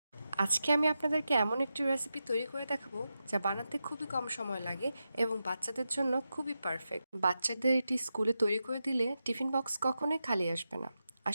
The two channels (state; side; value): inverted; both; correlation -0.89